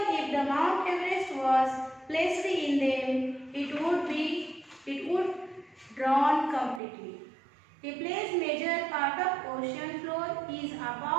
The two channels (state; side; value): drops out; left; at 6.8 s